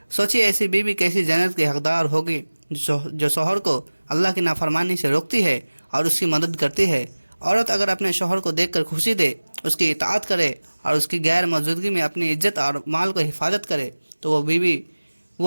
سوچیے ایسی بیوی کیسی جنت کی حقدار ہوگی جو شوہر کو اللہ کی نافرمانی سے روکتی ہے اور اس کی مدد کرتی ہے۔ عورت اگر اپنے شوہر کو دیکھ کر خوشی دے، اس کی اطاعت کرے اور اس کی غیر موجودگی میں اپنی عزت اور مال کو حفاظت کرے تو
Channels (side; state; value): both; inverted; correlation -1.00